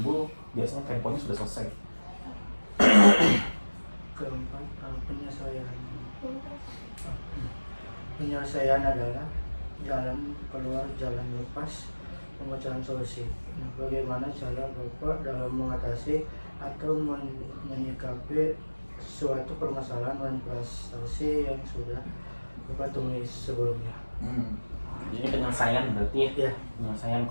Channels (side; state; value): both; inverted; correlation -1.00